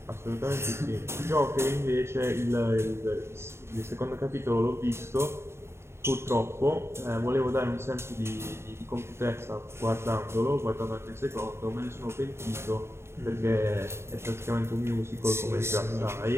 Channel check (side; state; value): left; late; 0.12 ms